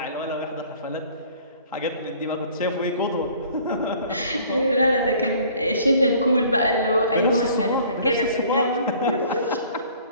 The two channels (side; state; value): both; inverted; correlation -0.53